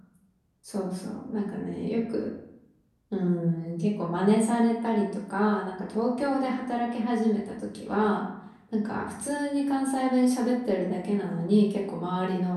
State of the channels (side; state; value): both; identical; correlation 1.00